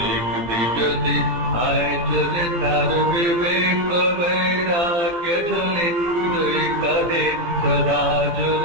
যদি আয় চলে, তার বিবেক বৈরাগ্য ঝোলে দুই কাঁধে সদা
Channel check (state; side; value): late; left; 17 ms